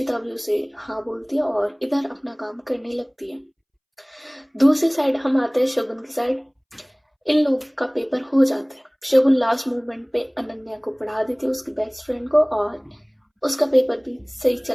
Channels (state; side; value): identical; both; correlation 1.00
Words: भी उसे हाँ बोलती है और इधर अपना काम करने लगती है। दूसरी साइड हम आते हैं शगुन की साइड। इन लोग का पेपर हो जाता है। शगुन लास्ट मोमेंट पे अनन्या को पढ़ा देती है, उसकी बेस्ट फ्रेंड को, और उसका पेपर भी सही